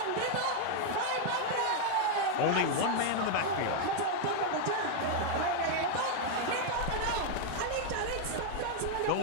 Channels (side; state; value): both; different; correlation 0.00